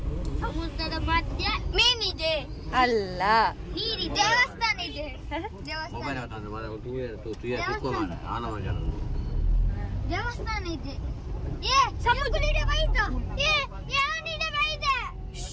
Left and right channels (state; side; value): identical; both; correlation 1.00